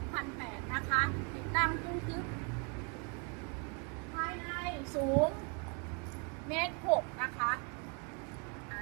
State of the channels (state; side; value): quieter; left; 34.2 dB